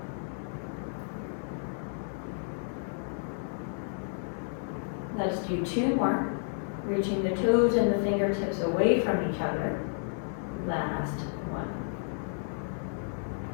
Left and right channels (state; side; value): silent; right; digital silence